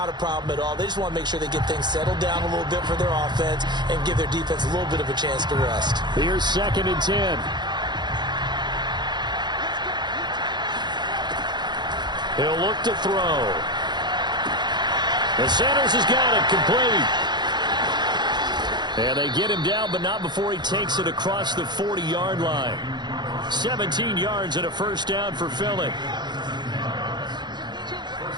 a problem at all. They just want to make sure they get things settled down a little bit for their offense and give their defense a little bit of a chance to rest. Here's 2nd and 10. He'll look to throw. And Sanders has got it complete. And they get him down, but not before he takes it across the 40-yard line. 17 yards and a first down for Philly.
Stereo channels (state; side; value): late; left; 0.21 ms